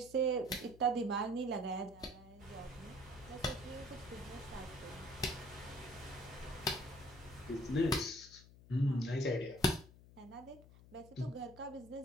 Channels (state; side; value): noise; left; hum, 20 dB below the sound